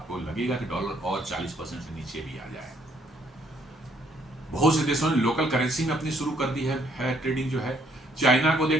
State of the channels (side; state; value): both; normal; correlation 0.67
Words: लगेगा कि डॉलर और 40% से नीचे भी आ जाए। बहुत से देशों ने लोकल करेंसी में अपनी शुरू कर दी है ट्रेडिंग जो है। चाइना को